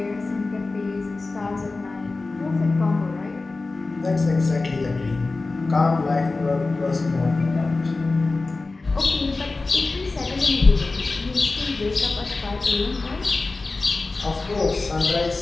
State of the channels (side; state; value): right; quieter; 3.5 dB